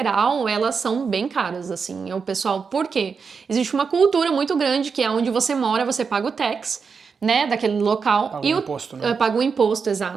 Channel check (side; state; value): left; quieter; 5.6 dB